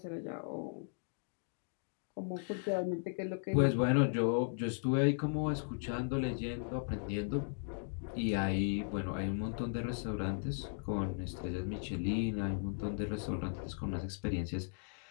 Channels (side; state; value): right; silent; digital silence